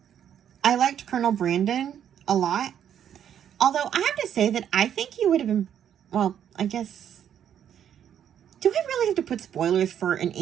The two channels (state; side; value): quieter; left; 9.4 dB